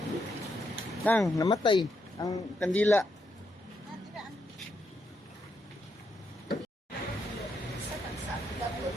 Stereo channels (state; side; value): normal; both; correlation 0.80